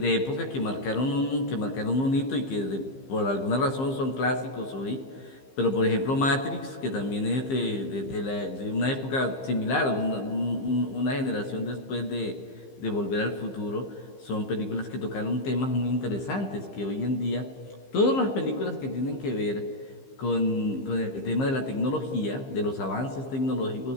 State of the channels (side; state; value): right; late; 15 ms